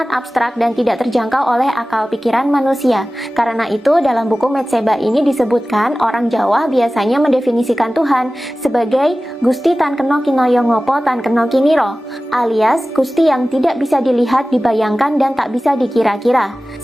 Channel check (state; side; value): normal; both; correlation 0.96